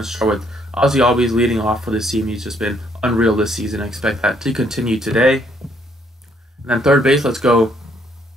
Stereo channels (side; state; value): both; normal; correlation 0.68